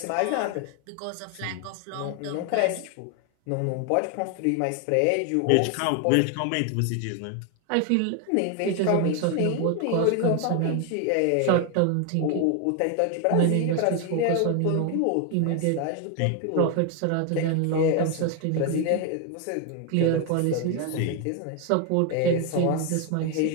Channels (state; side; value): different; both; correlation 0.01